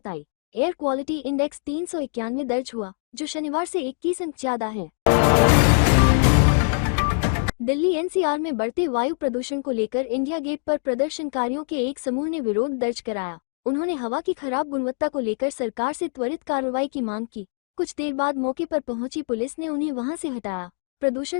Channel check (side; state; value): right; silent; digital silence